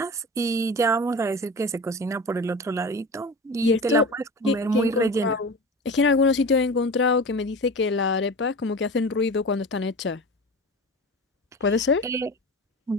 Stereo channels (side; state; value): both; normal; correlation 0.32